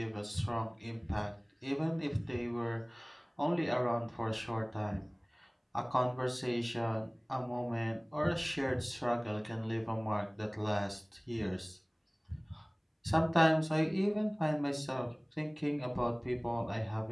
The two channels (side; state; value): both; identical; correlation 1.00